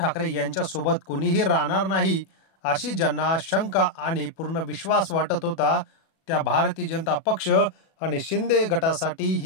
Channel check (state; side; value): late; right; 37 ms